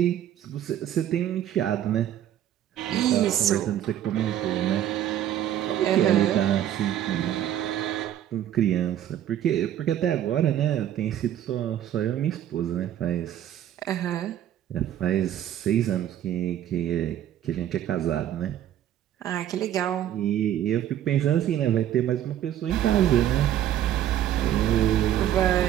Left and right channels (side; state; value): left; quieter; 11.3 dB